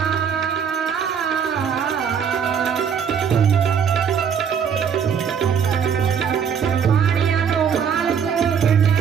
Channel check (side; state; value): left; quieter; 7.3 dB